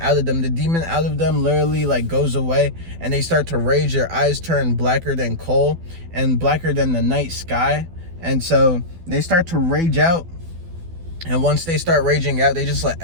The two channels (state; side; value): late; left; 12 ms